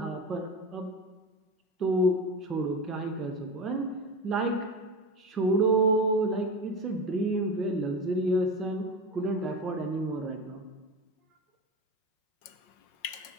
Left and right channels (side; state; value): right; late; 5.5 ms